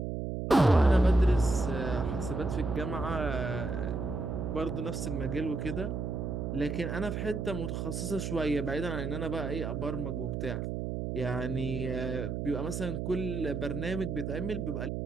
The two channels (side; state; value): right; noise; hum, 3 dB below the sound